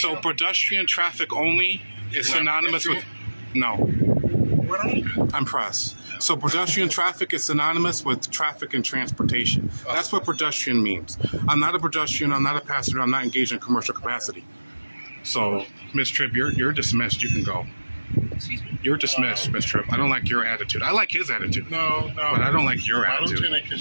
So down. pedestrian traffic only is Not synonymous with, no, What are you? I'm press. So pedestrian traffic is synonymous with traffic and transportation. That's what pedestrian means. I'm not a pedestrian, I'm not a passenger, I'm not engaged in commercial capacity. So, Miss Tripp, you're dismissed, you can go. Excuse me? You're dismissed, Miss Tripp. I don't like your attitude. I like his attitude. No. But I don't like your My attitude. lieutenant,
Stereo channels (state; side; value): inverted; both; correlation -1.00